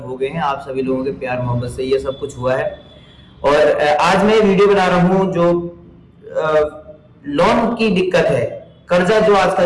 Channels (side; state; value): both; identical; correlation 1.00